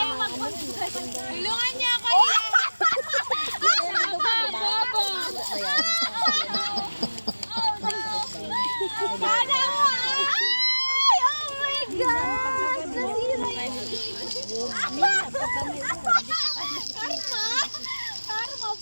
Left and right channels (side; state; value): both; inverted; correlation -1.00